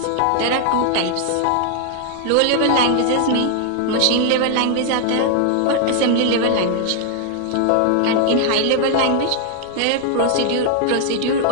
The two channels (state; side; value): different; both; correlation 0.00